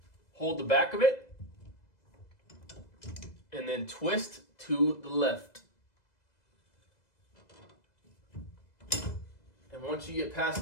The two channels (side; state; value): right; late; 2.0 ms